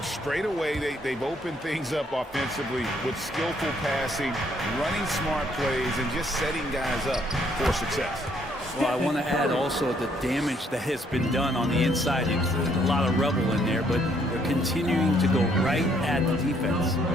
Straight away, they've opened things up offensively with skillful passing, running smart plays, and just setting guys up for success. Well, I want to add also the damage that has been done on the inside. There's a lot of rubble in there, but they're continuing to go right at the defense.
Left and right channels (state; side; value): normal; both; correlation 0.68